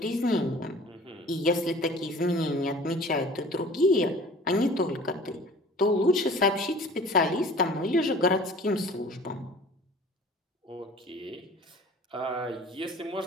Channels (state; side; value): normal; both; correlation 0.46